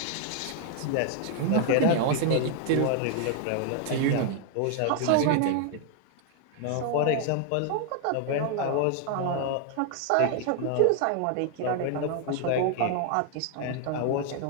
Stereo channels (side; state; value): both; different; correlation 0.00